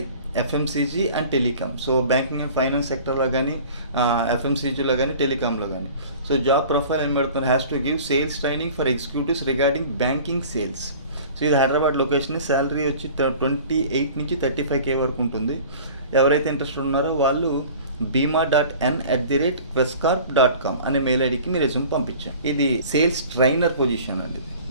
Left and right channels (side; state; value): both; inverted; correlation -0.44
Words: FMCG and telecom. So banking and finance సెక్టర్లో కానీ, ఎఫ్ఎంసీజీలో కానీ, టెలికామ్లో కానీ. సో జాబ్ ప్రొఫైల్ ఏం పెడుతున్నారు, has to give sales training for executives regarding banking sales. So ఇది Hyderabad location. Salary వచ్చి 28 నుంచి 35K వరకు ఉంటుంది. ఎవరైతే ఇంట్రెస్టెడ్ ఉన్నారో వాళ్ళు bima.n@questcorp.com అనే మెయిల్ ఐడికి మీరు రెజ్యూమ్ పంపించాం. ఇది సేల్స్ ట్రైనర్ పొజిషన్ అండి.